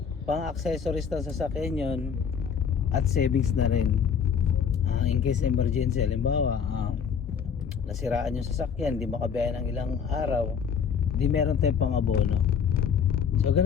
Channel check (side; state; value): right; quieter; 7.0 dB